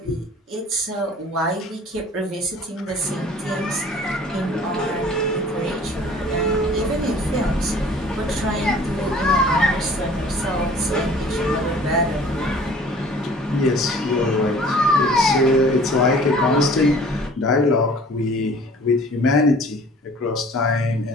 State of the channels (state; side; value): normal; both; correlation 0.49